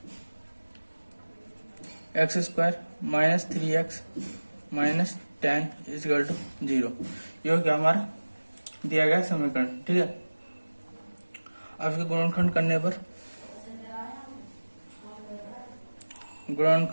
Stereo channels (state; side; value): inverted; both; correlation -1.00